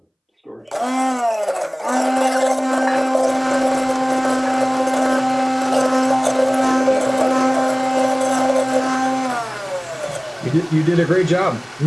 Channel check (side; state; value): both; identical; correlation 1.00